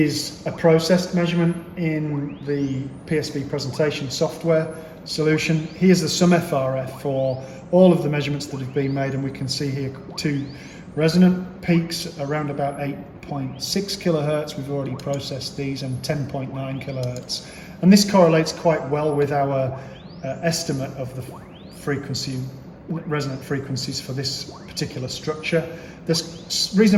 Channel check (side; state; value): both; identical; correlation 1.00